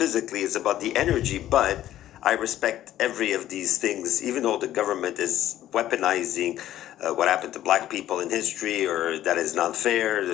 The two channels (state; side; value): quieter; right; 12.9 dB